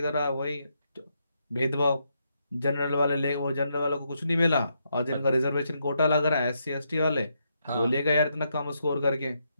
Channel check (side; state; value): both; inverted; correlation -0.79